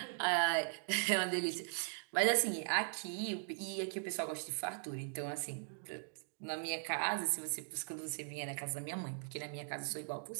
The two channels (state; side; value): silent; left; digital silence